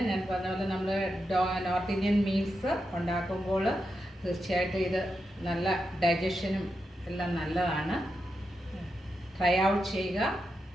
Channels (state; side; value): normal; both; correlation 0.87